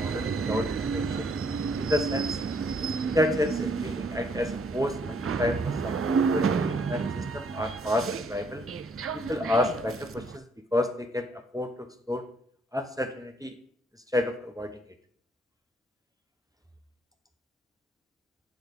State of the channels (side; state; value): both; normal; correlation 0.67